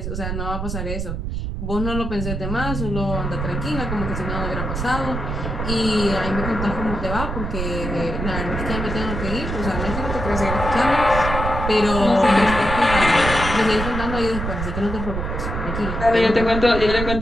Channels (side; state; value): right; noise; rumble, 4 dB below the sound